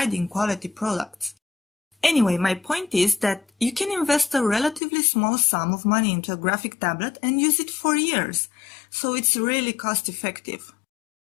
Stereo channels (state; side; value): drops out; right; at 4.8 s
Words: quality products. Anyway, my point is that you can invest a relatively small sum of money into a graphic tablet and use it for years, so it's really cost effective.